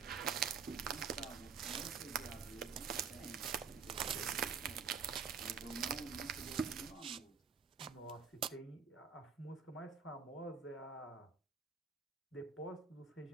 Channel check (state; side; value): quieter; left; 6.2 dB